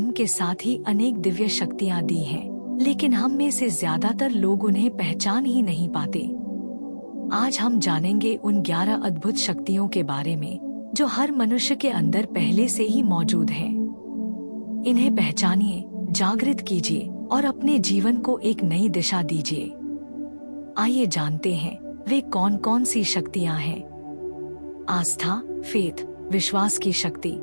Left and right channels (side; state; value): both; inverted; correlation -1.00